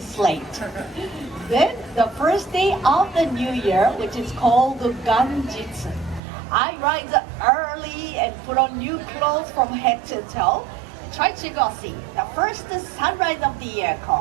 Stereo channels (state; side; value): drops out; left; at 6.2 s